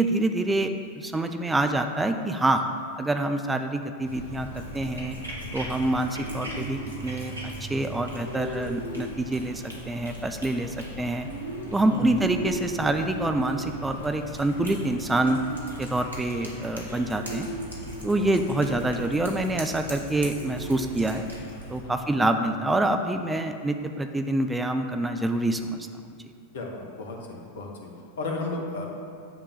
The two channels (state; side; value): normal; both; correlation 0.66